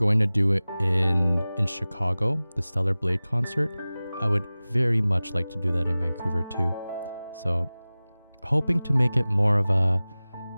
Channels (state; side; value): inverted; both; correlation -0.98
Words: to do in Chicago, the Stellar Blade concert, I would very much like to do that in Vancouver too. So hoping to make it more of a